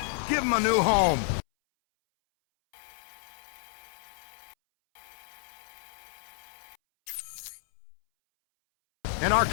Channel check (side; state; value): right; silent; 58 dB below the other